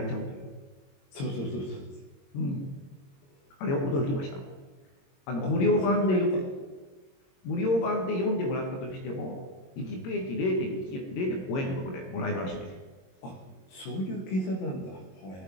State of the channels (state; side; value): late; right; 22 ms